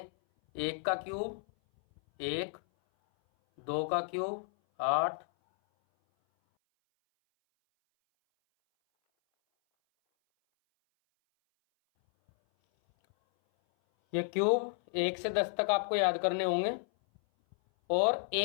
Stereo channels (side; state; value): right; silent; 56 dB below the other